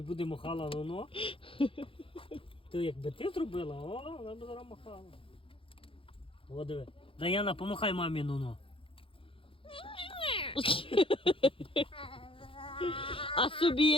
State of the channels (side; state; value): right; late; 0.26 ms